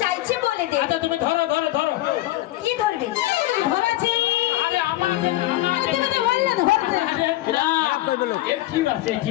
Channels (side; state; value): right; quieter; 16.7 dB